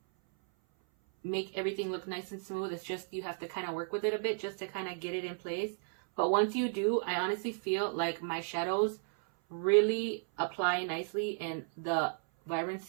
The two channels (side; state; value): left; silent; 55 dB below the other